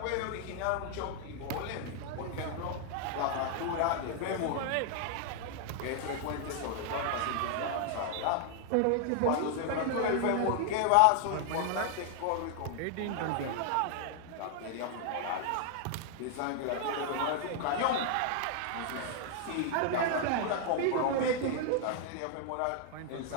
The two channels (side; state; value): both; different; correlation 0.00